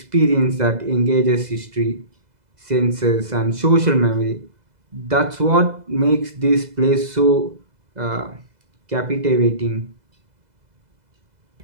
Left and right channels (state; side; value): late; left; 2.0 ms